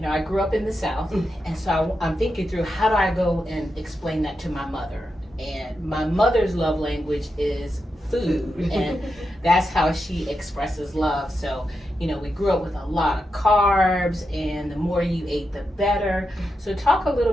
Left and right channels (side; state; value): both; normal; correlation 0.87